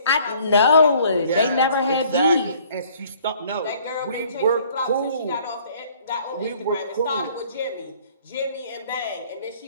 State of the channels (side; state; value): both; inverted; correlation -0.57